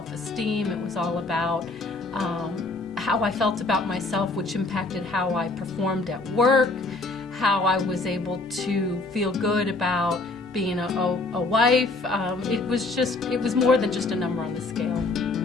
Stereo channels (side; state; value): right; quieter; 3.3 dB